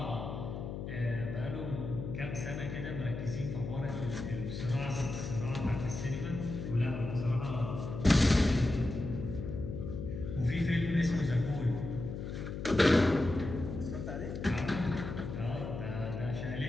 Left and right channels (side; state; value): left; noise; hum, 6 dB below the sound